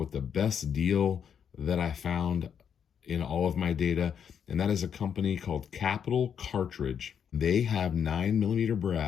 the best deal that I found in all of my data, and that is a company called Capital Cartridge. They have 9mm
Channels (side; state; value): right; quieter; 7.9 dB